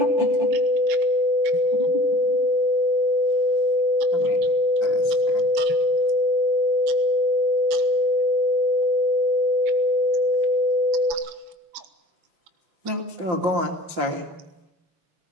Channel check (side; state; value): left; late; 5.8 ms